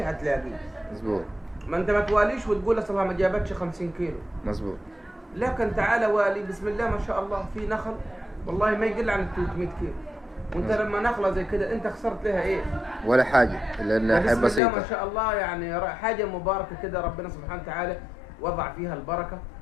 هتلاقيه. مظبوط. ما انت ما تواليش وتقول اصلها ما جابتش 50 كيلو. مظبوط. لكن تعال والي بسم الله ما شاء الله، في نخل والله ما يقل عن 300 كيلو، وانت لما نخله زي كده انت خسرت لها ايه؟ ولا حاجه، لانها حاجه بسيطه. بسم الله ما شاء الله، يعني حاجه مباركه كده، ربنا سبحانه وتعالى وضع فيها البركه.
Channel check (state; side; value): drops out; right; at 14.6 s